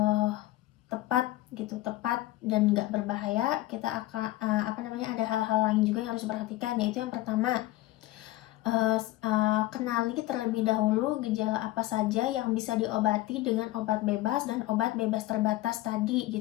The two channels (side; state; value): right; quieter; 17.0 dB